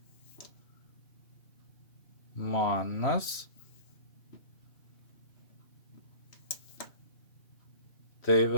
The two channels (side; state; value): right; late; 3.1 ms